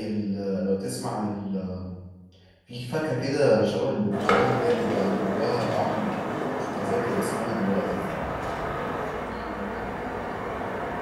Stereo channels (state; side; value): identical; both; correlation 1.00